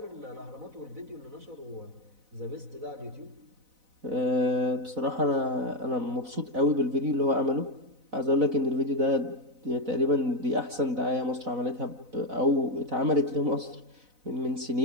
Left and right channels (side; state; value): left; late; 4.0 ms